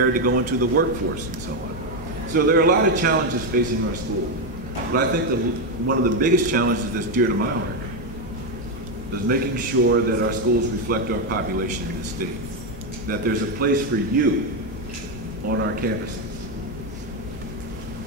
to go into the workforce and so on. So there are a lot of challenges facing our school. But I think one of the biggest challenges that's dear to my heart is making sure that our schools reflect our population in the state, that there's a place for you on our campuses.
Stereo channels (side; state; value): both; normal; correlation 0.07